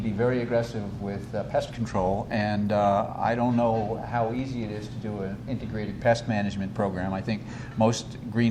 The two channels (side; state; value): both; identical; correlation 1.00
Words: be very aggressive with pest control, and I don't know how easy it is to do an integrated pest management program. I think most